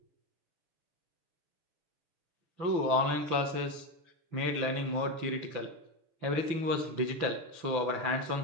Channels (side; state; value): left; late; 6.0 ms